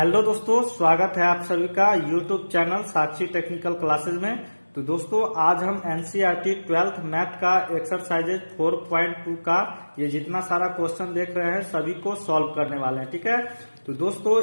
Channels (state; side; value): inverted; both; correlation -1.00